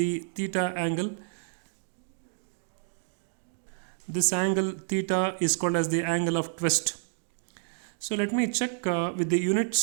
theta angle, this angle theta is called as the angle of twist. So let me check with the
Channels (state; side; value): silent; left; digital silence